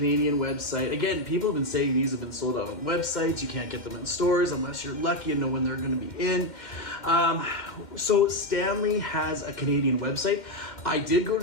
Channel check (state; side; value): late; right; 2.1 ms